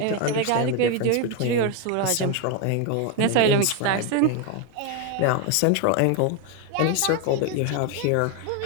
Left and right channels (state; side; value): different; both; correlation 0.02